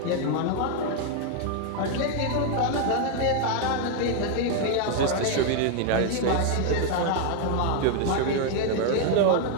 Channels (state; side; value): different; both; correlation 0.01